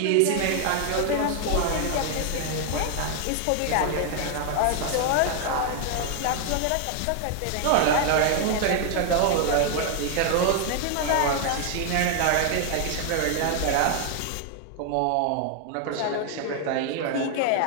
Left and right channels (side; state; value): both; different; correlation 0.00